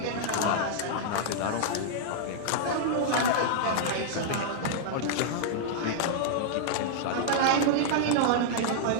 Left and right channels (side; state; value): both; different; correlation -0.01